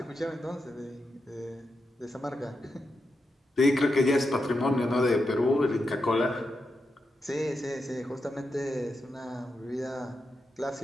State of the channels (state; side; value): normal; both; correlation 0.86